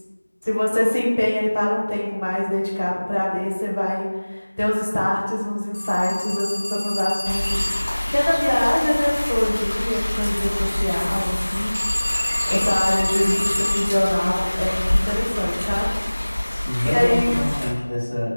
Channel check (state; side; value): inverted; both; correlation -1.00